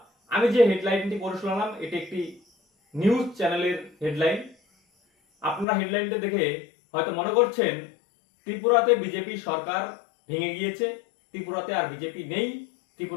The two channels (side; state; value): right; drops out; at 5.7 s